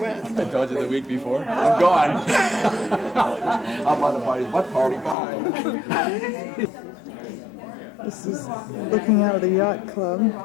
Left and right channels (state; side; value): drops out; right; at 5.2 s